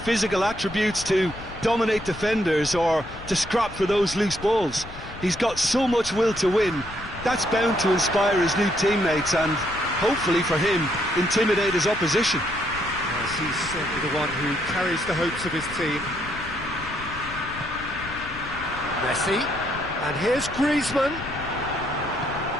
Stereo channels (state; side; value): noise; left; rumble, 14 dB below the sound